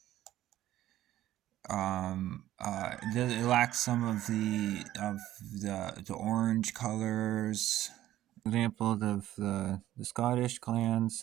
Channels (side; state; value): left; quieter; 13.7 dB